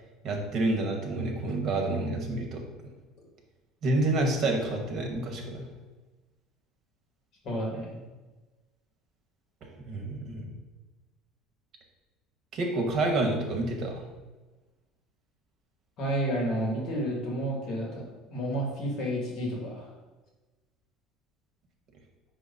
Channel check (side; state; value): both; normal; correlation 0.49